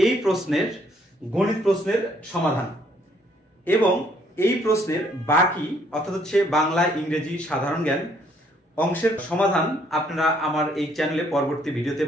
প্রশ্নের গণিত প্রশ্নের সমাধান এবং এই প্রশ্নের বাকি অর্থাৎ হচ্ছে বাংলা, ইংরেজি, সাধারণ জ্ঞান অংশের সমাধান আপনারা আমার এই চ্যানেলে পরবর্তী ভিডিওতে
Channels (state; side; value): normal; both; correlation 0.66